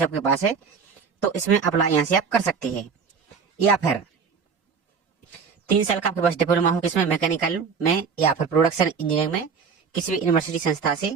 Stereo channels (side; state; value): left; quieter; 5.9 dB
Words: आपके पास है, तो इसमें अप्लाई यहाँ से आप कर सकते हैं। या फिर 3 साल का आपके पास डिप्लोमा हो किसमें, मैकेनिकल में या फिर प्रोडक्शन इंजीनियरिंग में किसी भी यूनिवर्सिटी संस्था से,